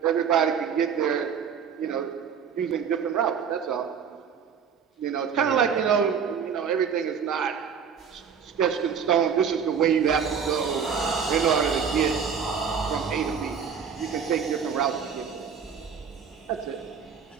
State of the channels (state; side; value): quieter; left; 7.0 dB